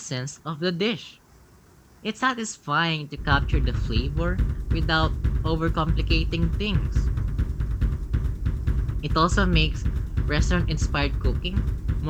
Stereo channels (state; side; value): identical; both; correlation 1.00